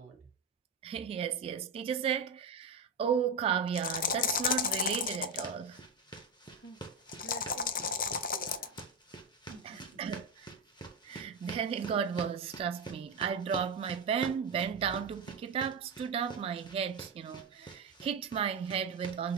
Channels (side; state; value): left; quieter; 3.5 dB